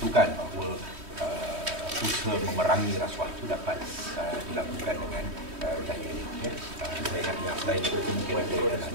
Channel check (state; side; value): late; left; 3.1 ms